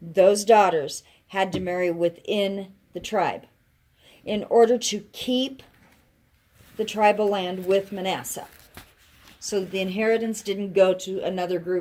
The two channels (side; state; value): both; identical; correlation 1.00